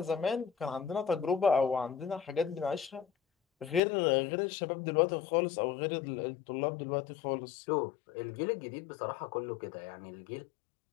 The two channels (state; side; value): drops out; right; at 3.8 s